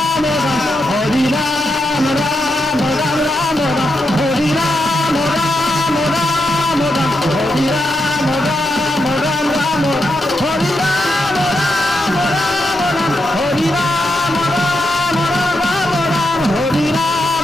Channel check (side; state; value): both; normal; correlation 0.83